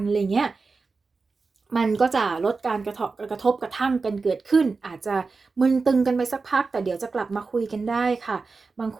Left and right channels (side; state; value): left; quieter; 4.3 dB